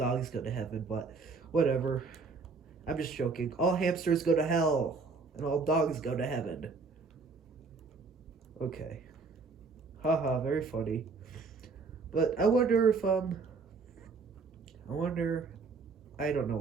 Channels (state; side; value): quieter; left; 4.5 dB